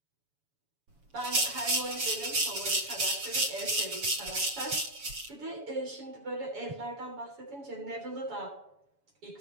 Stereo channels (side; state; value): left; late; 7.1 ms